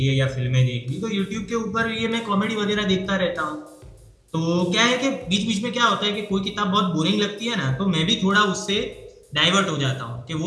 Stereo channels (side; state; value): both; identical; correlation 1.00